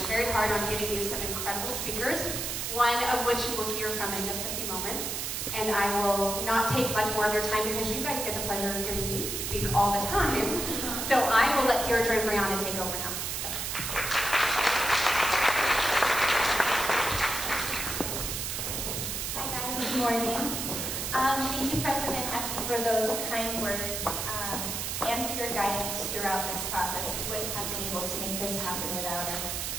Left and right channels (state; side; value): noise; right; hiss, 3 dB below the sound